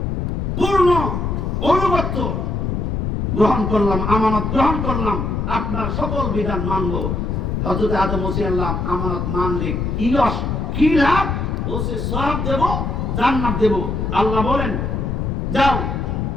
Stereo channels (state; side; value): noise; left; rumble, 1 dB below the sound